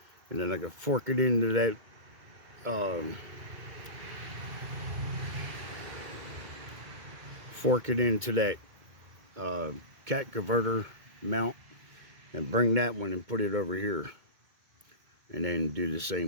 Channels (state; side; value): late; left; 2.2 ms